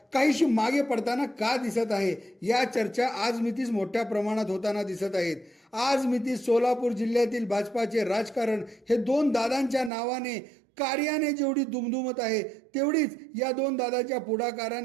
काहीशी मागे पडताना का दिसत आहे, या चर्चा आज मितीस मोठ्या प्रमाणात होताना दिसत आहेत. आज मितीस सोलापूर जिल्ह्यातील भाजपाचे राजकारण हे दोन दादांच्या नावाने कार्याने जेवढी दुमदुमत आहे, तेवढीच या दोन दादाच्या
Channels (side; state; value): left; drops out; at 9.9 s